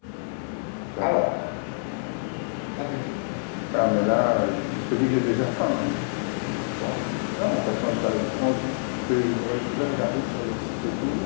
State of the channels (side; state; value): right; silent; 61 dB below the other